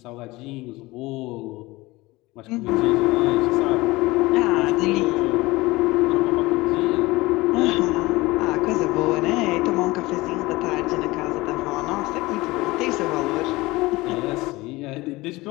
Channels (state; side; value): quieter; right; 20.8 dB